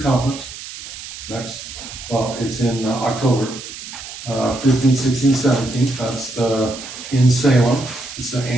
conference it's in October, 15th, 16th, 17th. That's in Salem. It's the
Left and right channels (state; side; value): noise; right; hiss, 12 dB below the sound